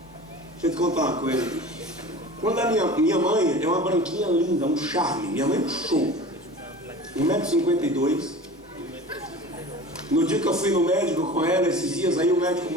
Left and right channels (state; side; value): normal; both; correlation 0.38